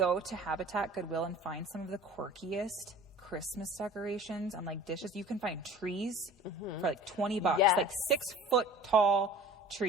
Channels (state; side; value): normal; both; correlation 0.43